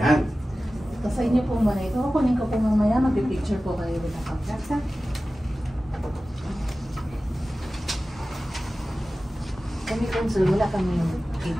Sa inyo po muna ito. Kunin ko po mamaya. Mag-picture po kayo with the contracts, ha? Kami konsul, wala kami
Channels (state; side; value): normal; both; correlation 0.95